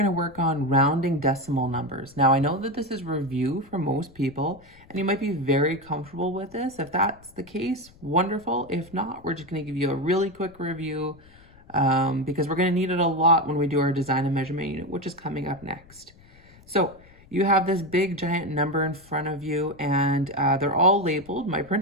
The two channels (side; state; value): left; noise; rumble, 25 dB below the sound